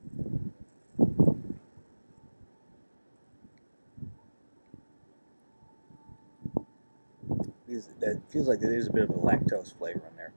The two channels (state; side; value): inverted; both; correlation -1.00